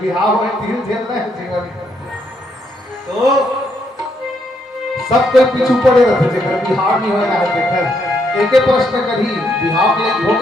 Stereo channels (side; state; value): both; normal; correlation 0.75